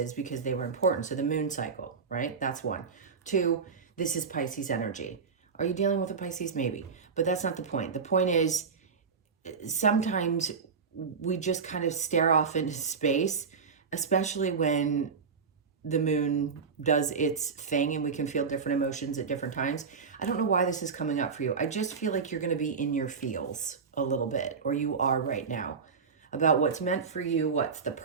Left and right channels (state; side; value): quieter; left; 5.5 dB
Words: because they were important. So the moon cycle, right? That's one. Two, this is Pisces energy. Are you dealing with a Pisces? Maybe. But that's not the point. The point is sometimes we just kind of stare off into space, especially when the moon does its thing and we can feel different emotions at different times. I don't know why this is coming up for you. I just feel like you're going to be in your feels a little bit, or you are right now, about what's meant for you, what's the